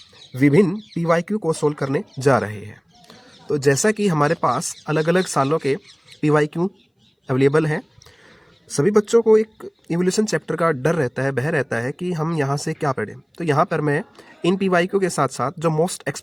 विभिन्न पीवाईक्यू को सोल्व करने जा रहे हैं। तो जैसा कि हमारे पास अलग अलग सालों के पीवाईक्यू अवेलेबल हैं, सभी बच्चों को एक इवोल्यूशन चैप्टर का डर रहता है, भय रहता है कि हम यहाँ से क्या पढ़ें। तो यहाँ पर मैं इन पीवाईक्यू के साथ साथ जो मोस्ट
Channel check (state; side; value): identical; both; correlation 1.00